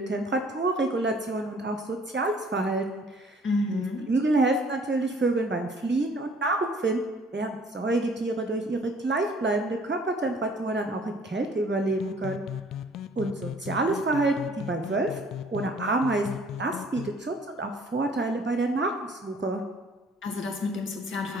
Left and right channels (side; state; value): both; normal; correlation 0.56